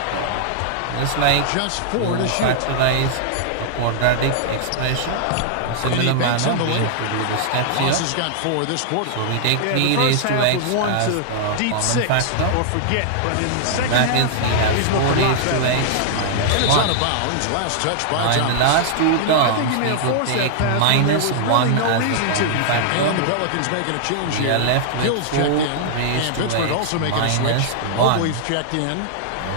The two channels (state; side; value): different; both; correlation -0.01